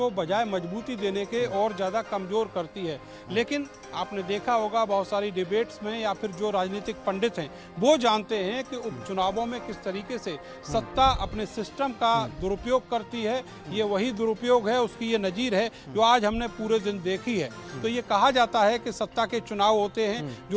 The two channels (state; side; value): identical; both; correlation 1.00